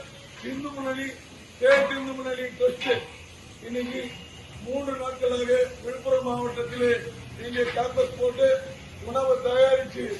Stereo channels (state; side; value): identical; both; correlation 1.00